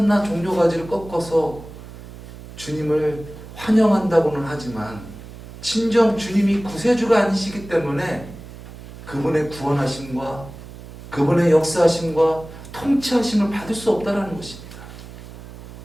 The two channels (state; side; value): noise; right; hum, 15 dB below the sound